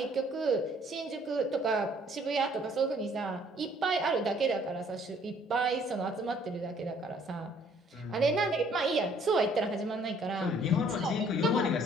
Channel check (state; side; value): normal; both; correlation 0.61